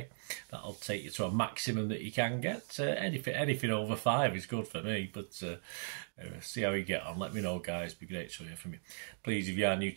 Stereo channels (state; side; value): silent; left; digital silence